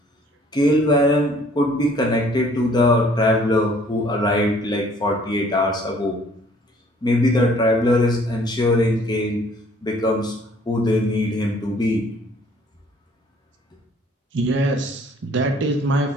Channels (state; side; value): normal; both; correlation 0.58